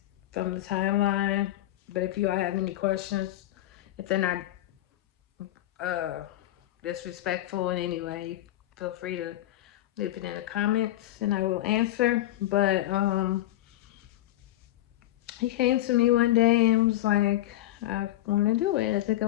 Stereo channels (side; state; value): right; quieter; 14.9 dB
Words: from the timeline. But if you all have any questions, if they're not uh, disrespectful in any way, feel free to leave it in the comments and I will answer. But he came to me one day and was like, I want to do it. I think I